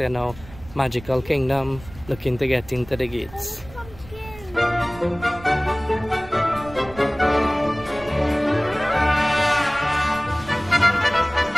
now Magical Kingdom, looking to get into the gates.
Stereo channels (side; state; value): right; noise; rumble, 18 dB below the sound